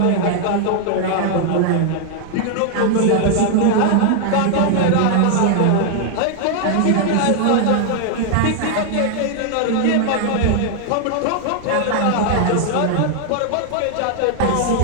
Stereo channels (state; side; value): different; both; correlation 0.00